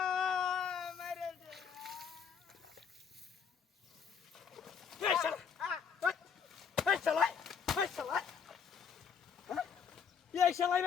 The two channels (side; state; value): right; quieter; 6.9 dB